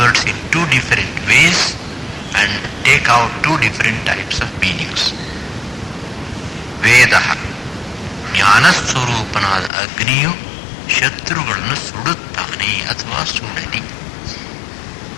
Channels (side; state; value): right; drops out; at 9.7 s